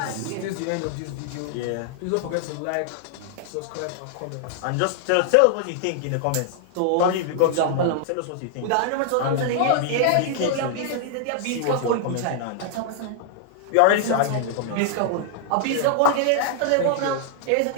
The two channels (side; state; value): both; different; correlation -0.01